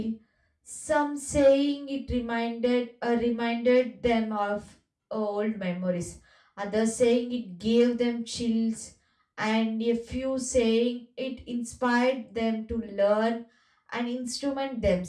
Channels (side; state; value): both; identical; correlation 1.00